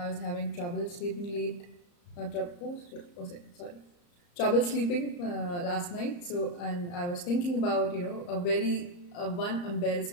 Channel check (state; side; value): late; right; 34 ms